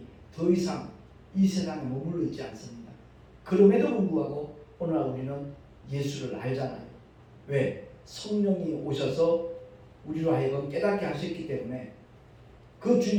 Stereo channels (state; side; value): identical; both; correlation 1.00